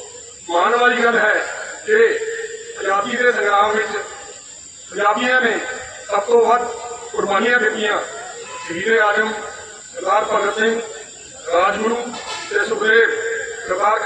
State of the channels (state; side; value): identical; both; correlation 1.00